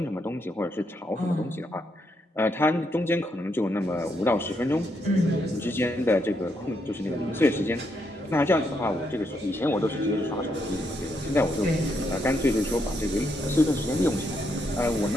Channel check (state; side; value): normal; both; correlation 0.78